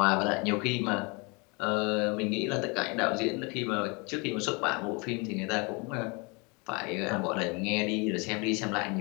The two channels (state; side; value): quieter; right; 29.8 dB